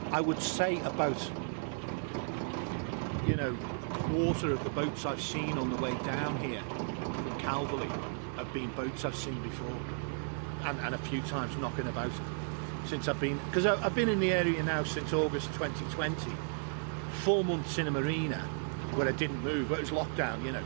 I would say about, you know, a quarter of the boats I've seen on the way down here from Calveley have been boats I've seen before, and a few times knocking about since I've been, because I've been in the area now since August 2020, 4 months in a marina where I didn't move, but it was lockdown, you know,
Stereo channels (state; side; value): silent; left; 55 dB below the other